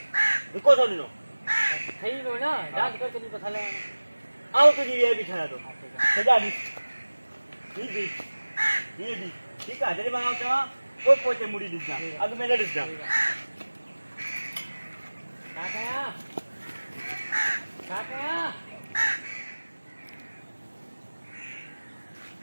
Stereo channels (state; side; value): inverted; both; correlation -1.00